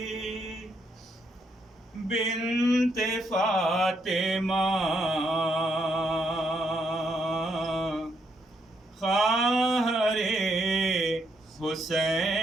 بنت فاطمہ خواہر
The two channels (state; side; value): normal; both; correlation 0.76